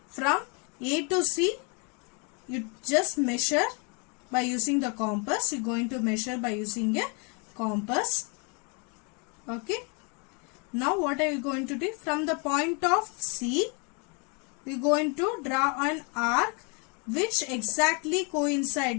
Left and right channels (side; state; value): right; quieter; 34.3 dB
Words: from A to C. You just measure by using the compass. You are going to measure by using a compass. Okay. Now what are you going to do? From the point of C, we are going to draw an arc which exactly